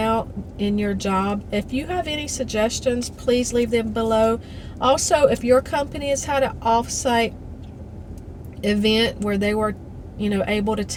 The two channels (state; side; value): identical; both; correlation 1.00